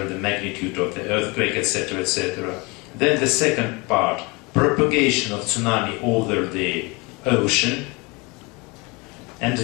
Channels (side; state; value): right; quieter; 26.8 dB